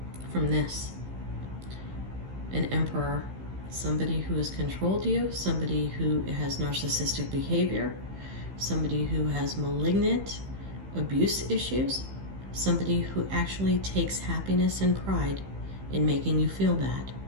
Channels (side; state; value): left; late; 15 ms